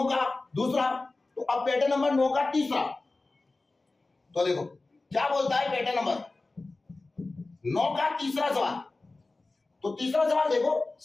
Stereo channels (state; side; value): quieter; right; 3.3 dB